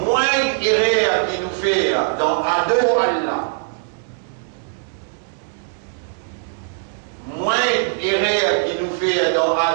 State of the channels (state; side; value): silent; left; digital silence